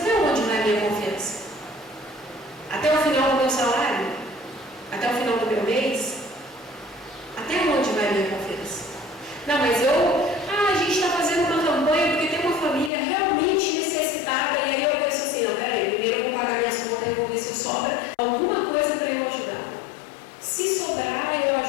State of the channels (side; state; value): right; drops out; at 12.9 s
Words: onde vai a minha confiança? Até o final do meu salário? Até o final do meu mês? Até onde vai a minha confiança? Não, mas a gente está fazendo uma campanha porque tem uma família realmente necessitada, e aí eu penso assim, não, peraí, primeiro eu vou pagar minhas contas e vou ver se sobra alguma coisa para eu ajudar. Se sobrar, eu